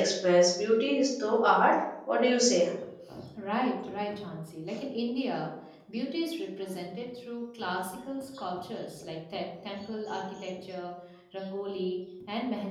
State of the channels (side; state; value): both; identical; correlation 1.00